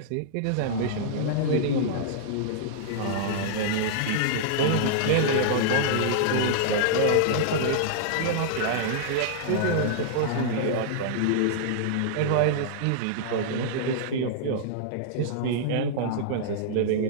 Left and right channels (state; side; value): different; both; correlation -0.02